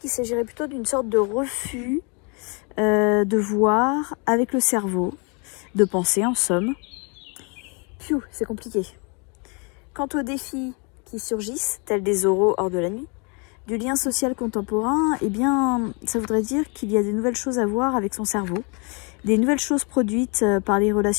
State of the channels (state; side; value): quieter; right; 33.7 dB